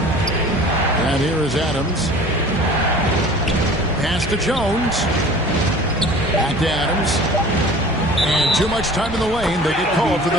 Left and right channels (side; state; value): right; noise; hum, 17 dB below the sound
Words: And here is Adams. Pass to Jones. Back to Adams. And too much time in the lane. They get called for the